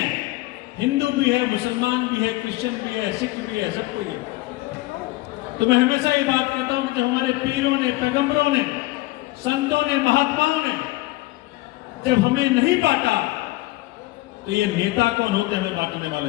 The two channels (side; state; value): right; quieter; 19.6 dB